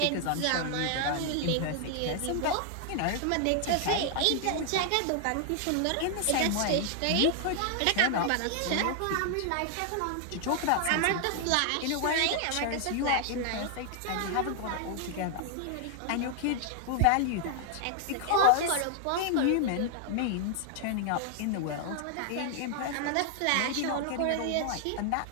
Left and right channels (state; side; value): different; both; correlation 0.00